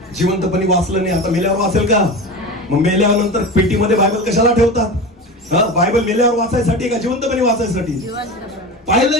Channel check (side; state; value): both; normal; correlation 0.28